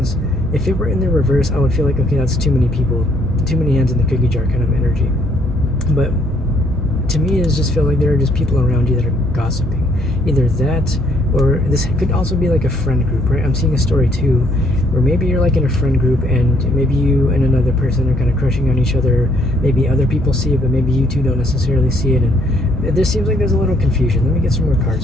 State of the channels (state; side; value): normal; both; correlation 0.67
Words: if it were in the reverse, I would feel like, okay, that's too many people, too many hands in the cookie jar kind of energy. But to me, it just feel like there are just people around you that are gossiping. Either that, or this could also be like a friend group, right? I'm seeing a story too, where maybe you're like in a friend group, and maybe you and another person are kind of crushing on each other. Maybe other people see it, but maybe you two don't necessarily see it. And this seems like there's a little confusion. Let me get some more